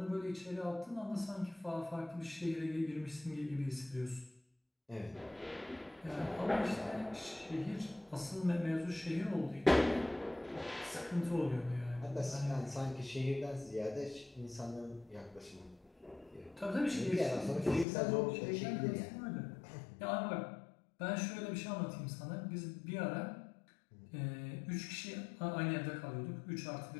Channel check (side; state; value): right; drops out; at 17.9 s